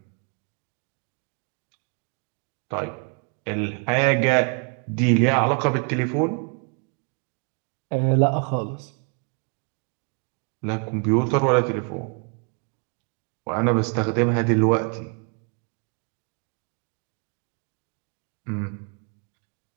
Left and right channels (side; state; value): left; quieter; 38.7 dB